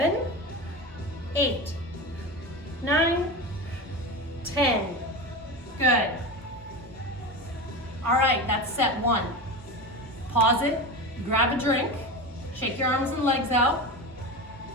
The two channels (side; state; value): both; normal; correlation 0.24